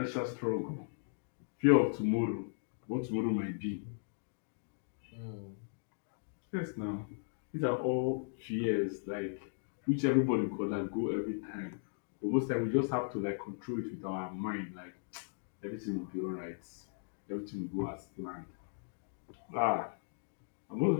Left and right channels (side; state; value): right; silent; digital silence